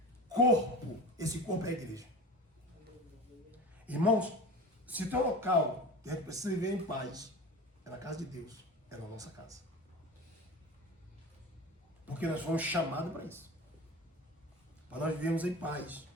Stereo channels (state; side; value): normal; both; correlation 0.33